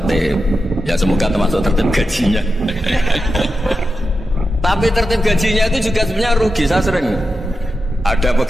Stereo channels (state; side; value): normal; both; correlation 0.90